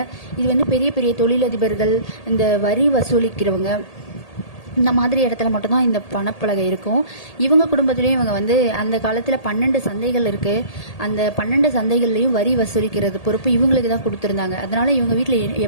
இது வந்து பெரிய பெரிய தொழிலதிபர்கள், இந்த வரி வசூலிக்கிறவங்க, இந்த மாதிரி இடத்துல மட்டும்தான் இந்த பணப்பலகை இருக்கும். இவங்க குடும்பத்துலேயும் இவங்க வந்து அந்த காலத்தில் 12 சந்தைகள் இருக்குது. அந்த 12 சந்தைகள்லையும் வரி வசூலிக்கிறது பொறுப்பு இவங்களுக்கு தான் கொடுத்துருந்தாங்க. அதனால் இவங்க வீட்டில்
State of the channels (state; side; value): late; right; 1.8 ms